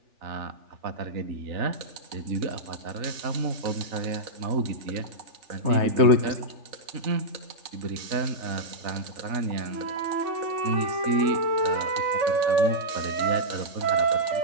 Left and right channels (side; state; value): left; late; 3.4 ms